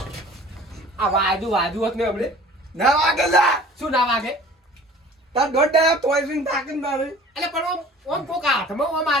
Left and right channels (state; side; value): normal; both; correlation 0.47